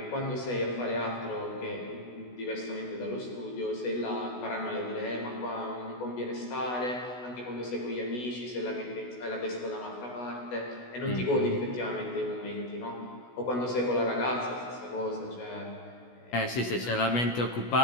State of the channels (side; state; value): right; late; 16 ms